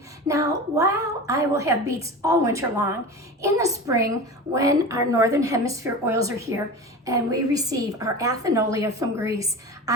Now, while I will have beets all winter long, in the spring, when our Northern Hemisphere oils are here and we receive our athenolia from Greece,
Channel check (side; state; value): both; normal; correlation 0.31